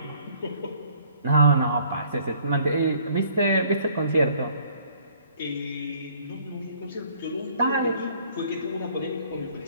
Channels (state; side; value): inverted; both; correlation -0.58